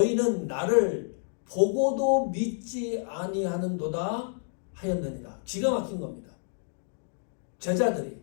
나를 보고도 믿지 아니하는도다 하였느니라. 기가 막힌 겁니다. 제자들이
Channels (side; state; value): right; silent; digital silence